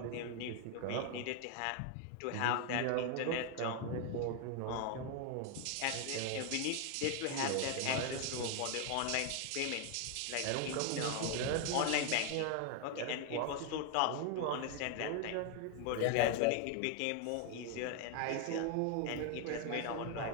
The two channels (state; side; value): different; both; correlation 0.01